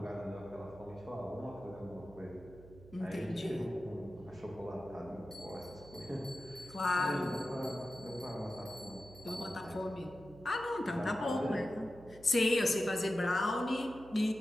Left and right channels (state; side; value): noise; right; hum, 19 dB below the sound